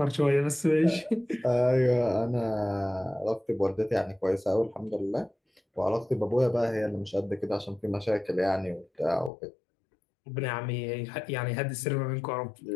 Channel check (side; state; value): right; drops out; at 9.3 s